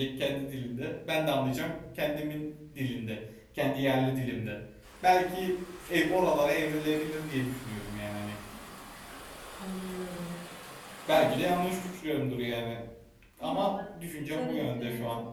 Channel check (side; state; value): both; identical; correlation 1.00